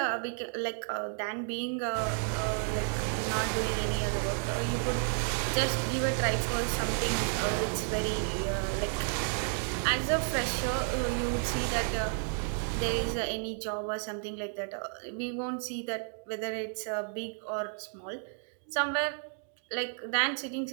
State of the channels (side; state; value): left; silent; 56 dB below the other